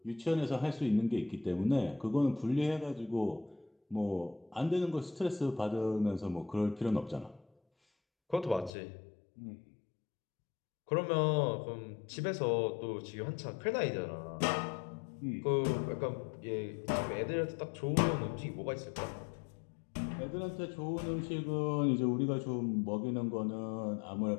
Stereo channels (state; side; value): drops out; right; at 8.7 s